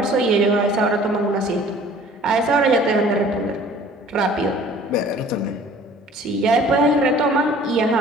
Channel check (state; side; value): normal; both; correlation 0.51